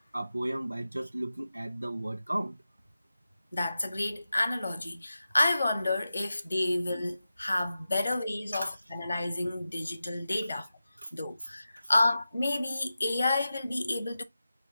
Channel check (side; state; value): both; inverted; correlation -0.93